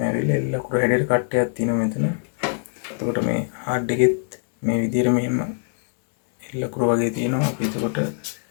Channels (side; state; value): right; silent; digital silence